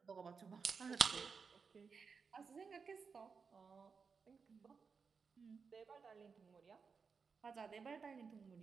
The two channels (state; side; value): quieter; left; 5.4 dB